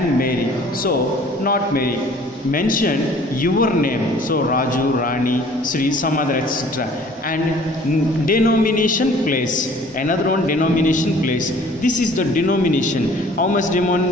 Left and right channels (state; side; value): normal; both; correlation 0.52